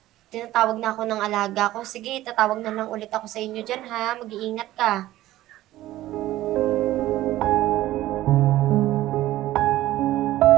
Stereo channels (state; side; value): quieter; left; 15.3 dB